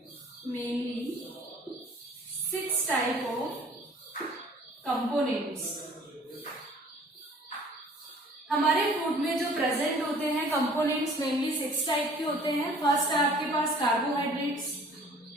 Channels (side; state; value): both; normal; correlation 0.52